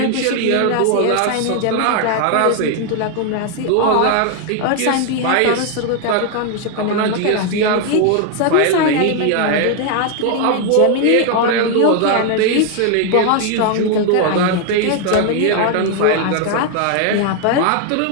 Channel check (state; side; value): different; both; correlation 0.00